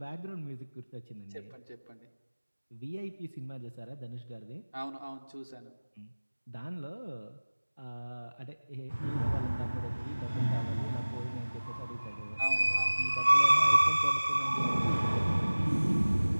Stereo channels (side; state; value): both; inverted; correlation -1.00